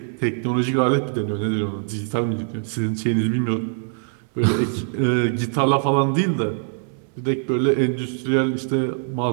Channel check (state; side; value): silent; left; 64 dB below the other